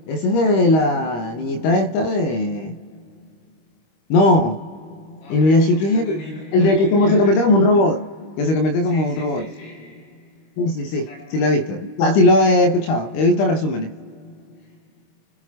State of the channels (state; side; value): late; right; 25 ms